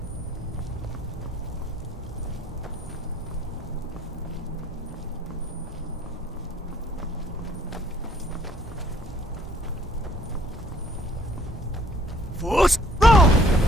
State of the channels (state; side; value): normal; both; correlation 0.61